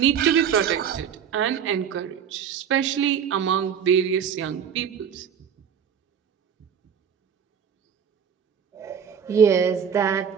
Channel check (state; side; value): quieter; left; 7.8 dB